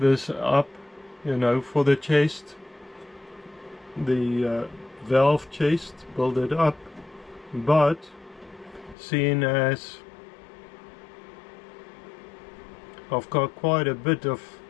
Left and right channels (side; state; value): right; drops out; at 9.0 s